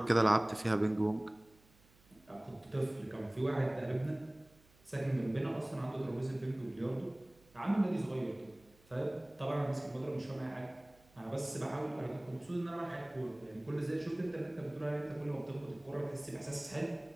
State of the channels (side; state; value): right; noise; hum, 29 dB below the sound